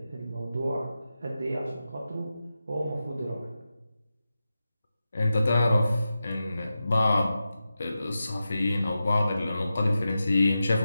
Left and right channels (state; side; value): inverted; both; correlation -0.91